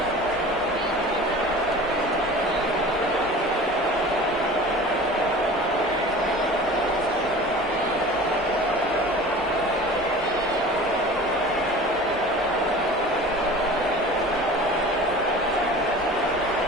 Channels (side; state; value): both; normal; correlation 0.40